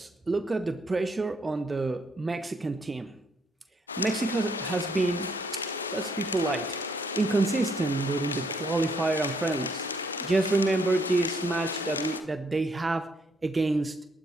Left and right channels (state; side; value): normal; both; correlation 0.71